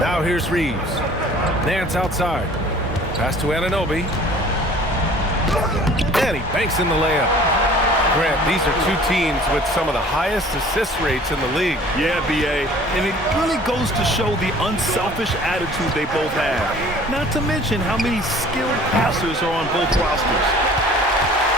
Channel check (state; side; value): normal; both; correlation 0.49